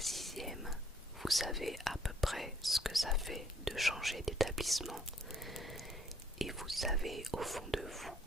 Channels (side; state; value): both; normal; correlation 0.64